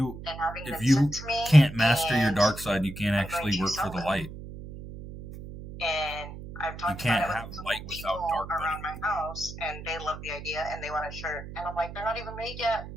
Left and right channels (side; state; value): right; noise; hum, 12 dB below the sound